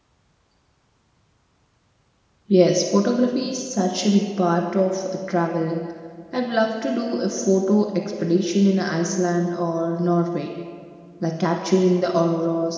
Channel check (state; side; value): identical; both; correlation 1.00